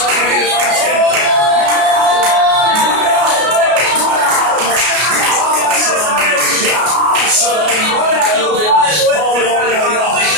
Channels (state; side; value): late; left; 33 ms